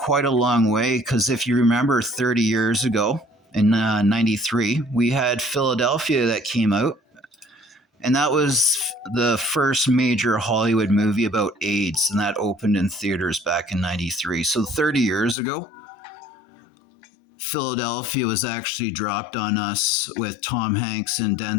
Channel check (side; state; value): right; drops out; at 15.4 s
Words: a long way because if you remember 30 years ago in 93, we had Philadelphia that came out. And that was the first major Hollywood movie about AIDS, and that opened in theaters back in 93. So 30 years ago, Philadelphia was actually dropped on us with Tom Hanks and